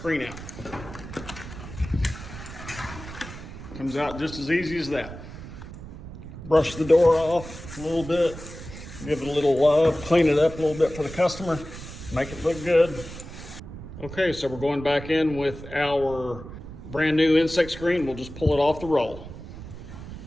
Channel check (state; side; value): noise; right; rumble, 12 dB below the sound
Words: out. Comes out just as easy as that. Brush the door off a little bit, give it a little love, clean it up a little bit for the customer, make it look good. Okay, so we're going back in with our brand new insect screen. We'll just pull it off the roll.